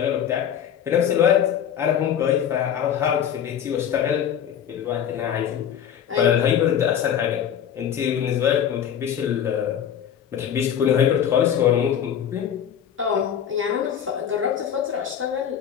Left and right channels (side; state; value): right; quieter; 9.1 dB